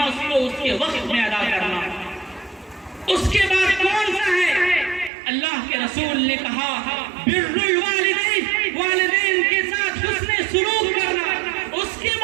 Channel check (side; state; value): left; drops out; at 5.1 s